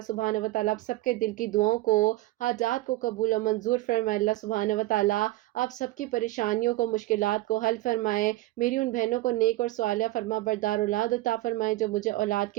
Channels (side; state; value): left; quieter; 18.1 dB